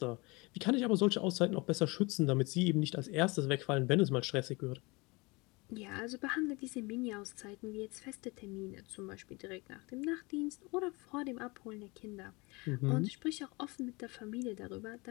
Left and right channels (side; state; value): right; quieter; 26.0 dB